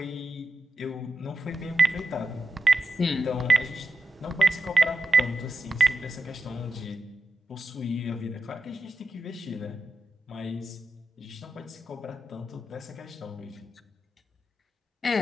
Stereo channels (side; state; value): both; normal; correlation 0.90